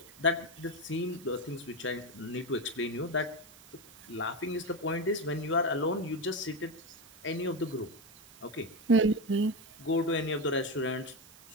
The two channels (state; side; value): noise; right; hiss, 22 dB below the sound